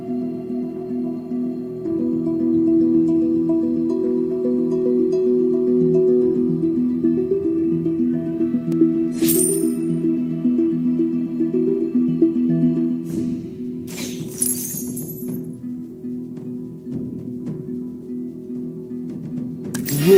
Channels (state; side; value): identical; both; correlation 1.00